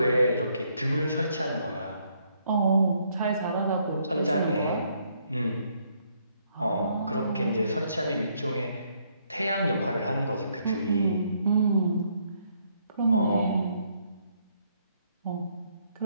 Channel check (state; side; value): inverted; both; correlation -0.71